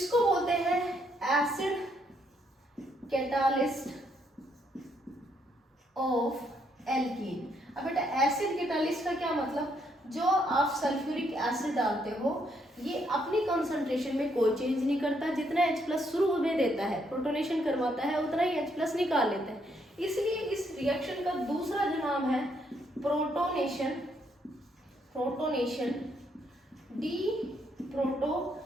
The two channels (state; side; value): normal; both; correlation 0.73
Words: बोलते हैं एसिड कैटालिस्ट ऑफ एल्कीन। अब बेटा एसिड कैटालिस्ट का क्या मतलब, जो आप सल्फ्यूरिक एसिड डालते हो ये अपनी कंसंट्रेशन में कोई चेंज नहीं करता, जितना H+ शुरू में देता है प्रोटोनेशन करवाता है उतना ही H+ निकाल लेता है। इसलिए इस रिएक्शन का दूसरा जो नाम है प्रोटोनेशन, प्रोटोनेशन डी